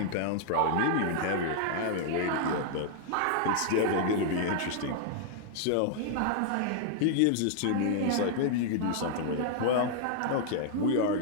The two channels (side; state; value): both; different; correlation -0.01